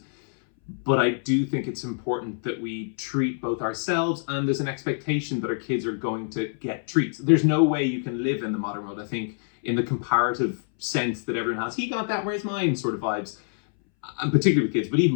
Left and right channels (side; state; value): right; silent; 61 dB below the other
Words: but I do think it's important that we treat both ourselves, and there's an expectation that our kids are going to get treats. There's no way you can live in the modern world, I think, in the comparative sense that everyone has, he got that, where's mine sort of vibes, and particularly with kids, but